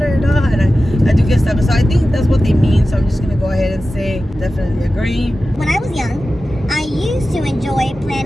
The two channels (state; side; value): normal; both; correlation 0.94